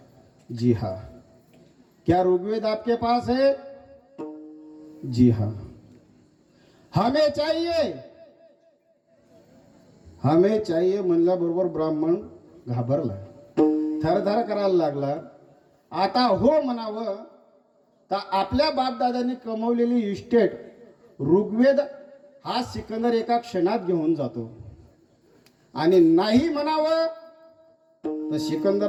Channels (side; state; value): both; identical; correlation 1.00